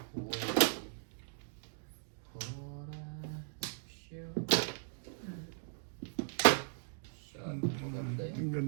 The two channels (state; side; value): silent; left; digital silence